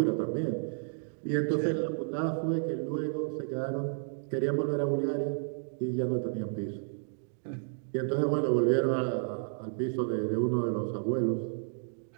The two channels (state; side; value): silent; left; digital silence